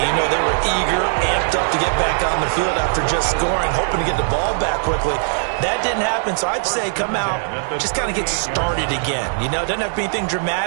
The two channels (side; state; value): left; silent; 65 dB below the other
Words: You know, they were eager, amped up to get back on the field after just scoring, hoping to get the ball back quickly. That didn't happen, so I'd say come out, just kind of get started again. You know, doesn't have to be anything